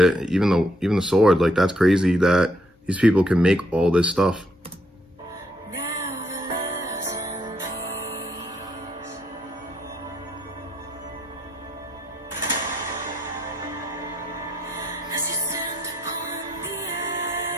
even the sword. Like, that's crazy that these people can make all this stuff.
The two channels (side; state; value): both; normal; correlation 0.72